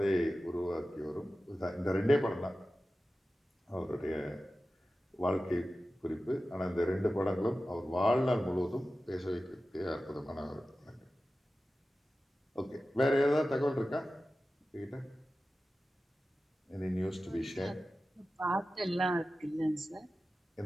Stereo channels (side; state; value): both; normal; correlation 0.94